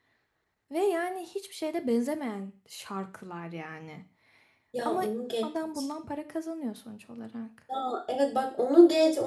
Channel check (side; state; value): both; identical; correlation 1.00